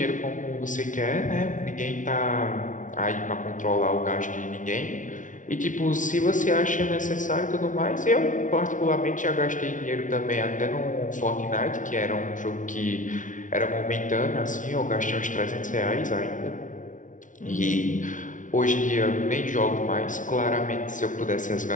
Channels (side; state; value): right; late; 0.37 ms